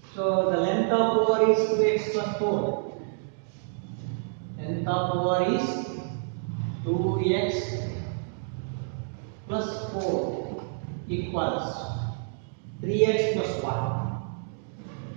so the length of OR is 2x plus 4. Length of OR is 2x plus 4 equals 3x plus 1.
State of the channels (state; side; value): silent; left; digital silence